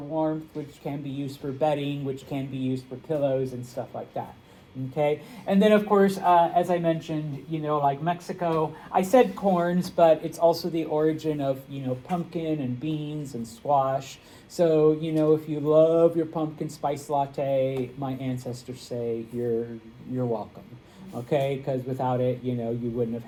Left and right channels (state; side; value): identical; both; correlation 1.00